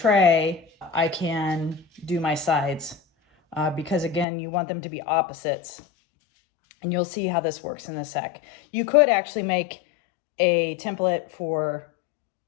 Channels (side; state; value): right; drops out; at 4.2 s